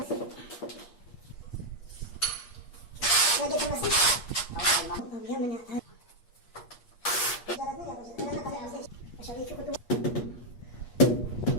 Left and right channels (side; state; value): right; late; 8.4 ms